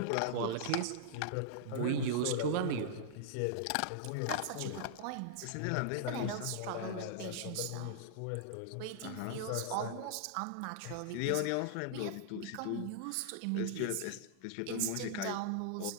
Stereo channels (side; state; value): both; different; correlation -0.01